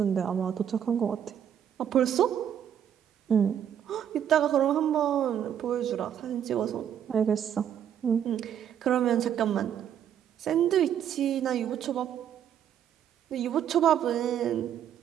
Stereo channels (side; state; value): left; quieter; 9.4 dB